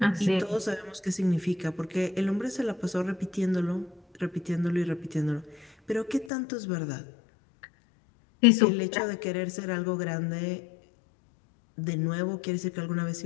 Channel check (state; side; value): drops out; right; at 6.3 s